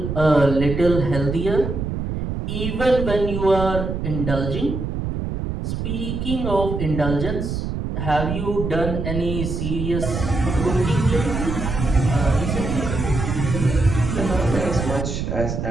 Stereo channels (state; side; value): noise; right; rumble, 3 dB below the sound